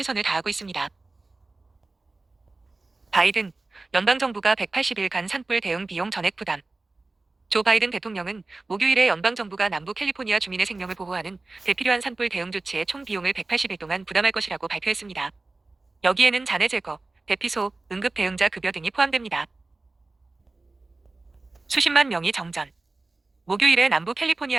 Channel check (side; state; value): left; quieter; 3.3 dB